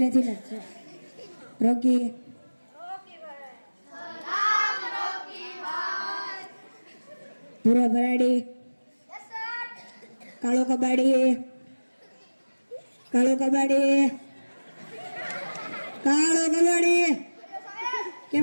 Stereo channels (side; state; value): both; inverted; correlation -1.00